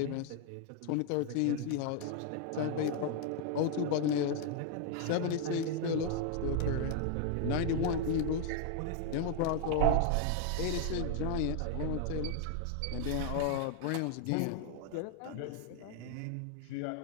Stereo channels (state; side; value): different; both; correlation 0.00